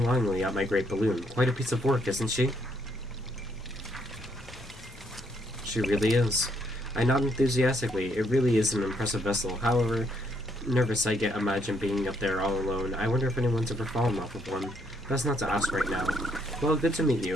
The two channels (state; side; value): normal; both; correlation 0.72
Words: longingly at my great balloon. Quite a piece of work, isn't she? She really is. I nod enthusiastically. It really is an impressive vessel. However nervous I get imagine being up there all alone. I wonder if anyone's ever fallen off of one. That's not to ask right now. Well, good to meet